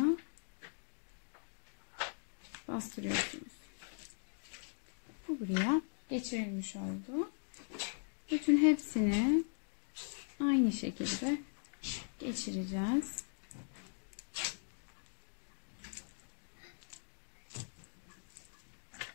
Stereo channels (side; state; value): right; silent; digital silence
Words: bastırıyorsunuz. Bu buraya geçirilmiş oldu. Bütün hepsini aynı şekilde geçireceğiz.